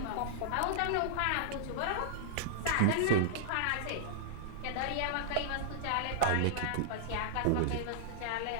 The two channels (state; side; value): different; both; correlation -0.02